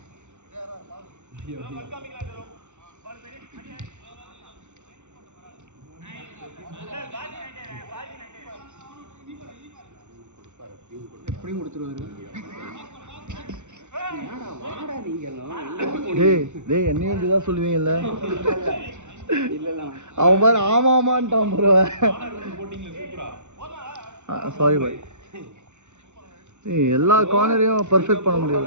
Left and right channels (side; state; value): left; late; 0.84 ms